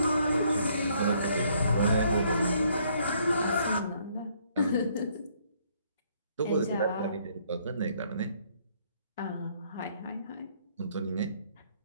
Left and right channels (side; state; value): both; inverted; correlation -0.66